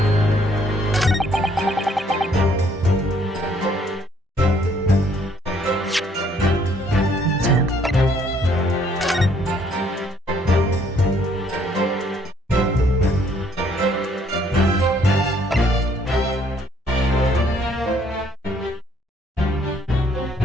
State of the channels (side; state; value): both; normal; correlation 0.65